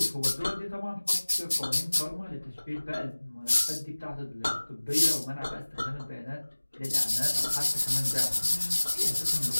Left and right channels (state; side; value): inverted; both; correlation -1.00